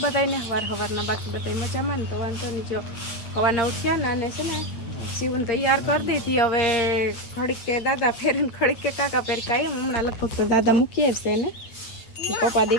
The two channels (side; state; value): right; late; 8.6 ms